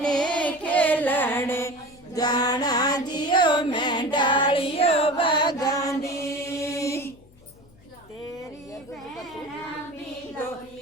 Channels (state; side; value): noise; left; hum, 26 dB below the sound